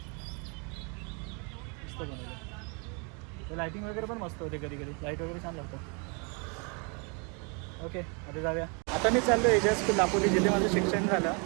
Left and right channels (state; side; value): quieter; left; 34.5 dB